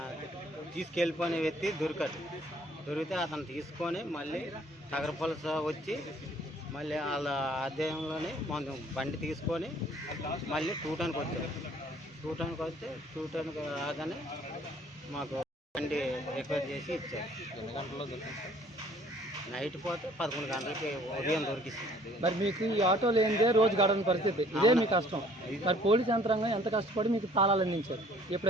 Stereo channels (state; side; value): normal; both; correlation 0.57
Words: తీసుకెళ్ళిపోయిన వ్యక్తి దొరికితే అతను తీసుకొని మళ్ళీ నగరపలస వచ్చి మళ్ళీ వాళ్ళ అధ్యయనంలోనే మనం బండి తీసుకొని మళ్ళీ టూటానికి వచ్చాం. టూటానికి వస్తే టూటానికి రాగానే మాకు బండి రిపేర్ చేసి ఇచ్చారు. ఎన్ని గంటల్లో దొరికింది? నైట్ పోతే 11 గంటలకి ఉదయం దొరికిస్తుంది. మరి మీకు ఈ ఆటో లేనిదే రోజు గడవని పరిస్థితి, ఇదే మీ కష్టం. మరి పోలీస్ యంత్రాంగం ఎంత కష్టపడి మీకు తాళాలు అందించారు,